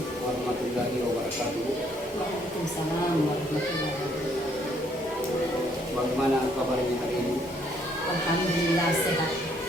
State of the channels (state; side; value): normal; both; correlation 0.68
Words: warahmatullahi wabarakatuh. Waalaikumsalam warahmatullahi wabarakatuh. Bagaimana kabarnya hari ini? Alhamdulillah sehat.